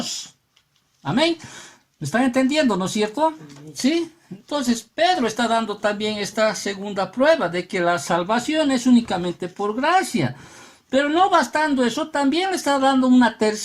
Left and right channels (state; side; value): identical; both; correlation 1.00